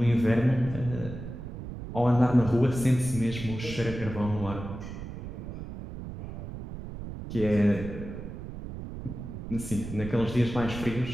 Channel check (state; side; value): noise; right; rumble, 9 dB below the sound